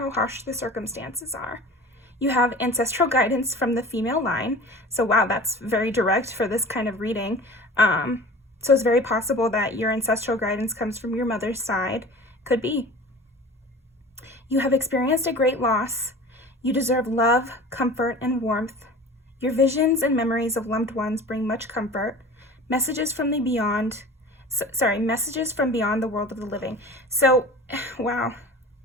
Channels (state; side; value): normal; both; correlation 0.39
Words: harsh the circumstances are. You have ancestral guidance from the female line. So wow, that's very direct for this kind of reading. So it's very possible that your ancestral guidance comes from your mother's side. Could be. You have experienced a great loss. You deserve love, comfort, and warmth. Your visions and memories of loved ones bring much comfort. Messages from the beyond. Messages from beyond the world of the living. So, wow.